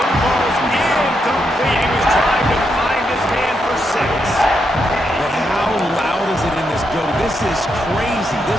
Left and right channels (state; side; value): normal; both; correlation 0.81